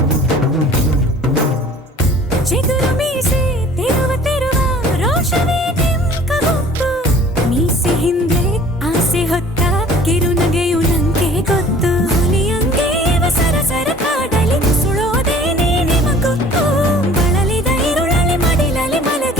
ಚಿಗುರು ಮೀಸೆ ತಿರುವ ರೋಷವೇ ನಿಂಕ ಗೊತ್ತು, ಮೀಸೆ ಹಿಂದೆ ಆಸೆ ಹೊತ್ತ ಕಿರುನಗೆಯು ನಂಗೆ ಗೊತ್ತು. ಹುಲಿಯಂಗೆ ಸರಸರ ಕಾಡಲಿ ಸುಳೋದೇನೆ ನಿಮಗೊತ್ತು, ಬಳಲಿದ ಇರುಳಲಿ ಮಡಿಲಲಿ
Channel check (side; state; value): both; normal; correlation 0.50